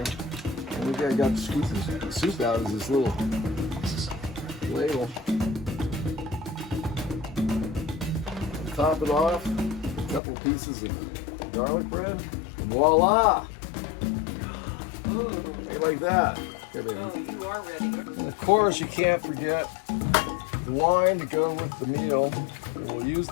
And look, I got to scoop the soup out of this little ladle. Top it off. A couple pieces of garlic bread. And voila! Like that. Oh, you are ready. And of course, you can't forget the wine to go with the meal. We'll use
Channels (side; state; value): right; drops out; at 10.2 s